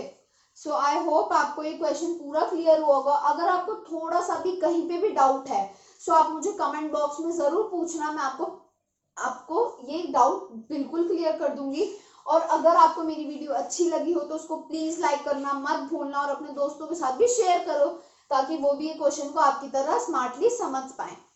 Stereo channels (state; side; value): identical; both; correlation 1.00